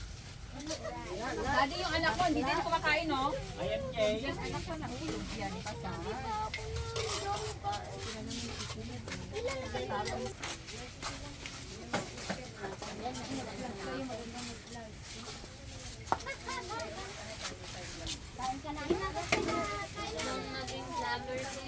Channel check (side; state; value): both; identical; correlation 1.00